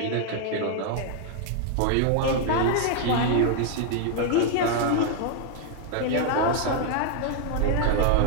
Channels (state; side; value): different; both; correlation 0.00